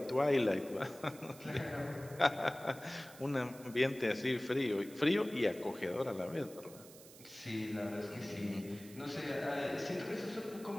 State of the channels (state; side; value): noise; right; hiss, 19 dB below the sound